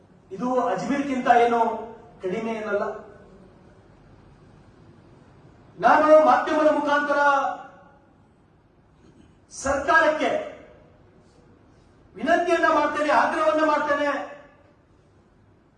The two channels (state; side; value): identical; both; correlation 1.00